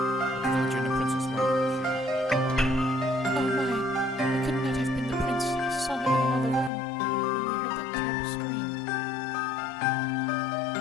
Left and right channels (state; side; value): drops out; right; at 6.7 s